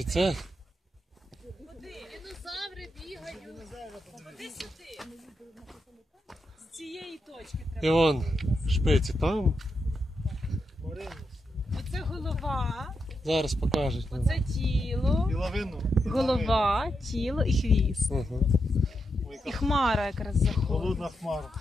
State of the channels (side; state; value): both; normal; correlation 0.85